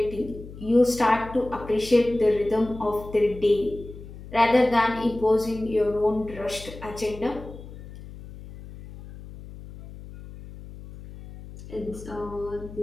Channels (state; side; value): noise; left; hum, 15 dB below the sound